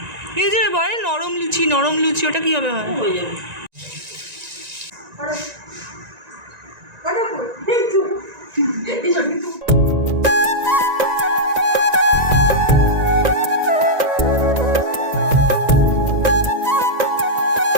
এই যে বলে নরম লুচি, নরম লুচি, ওটা কিভাবে হয়? হয়ে যাবে।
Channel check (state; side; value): late; left; 1.9 ms